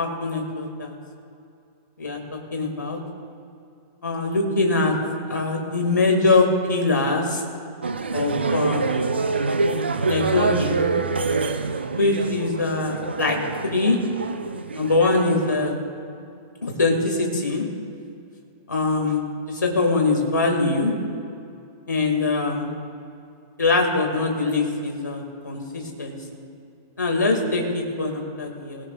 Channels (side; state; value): both; inverted; correlation -0.48